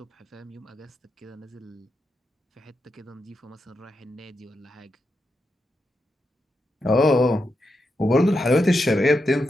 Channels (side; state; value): both; normal; correlation 0.86